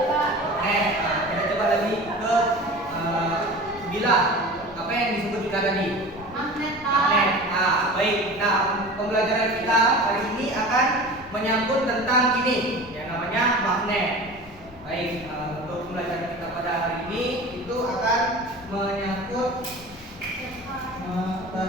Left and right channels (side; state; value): both; normal; correlation 0.36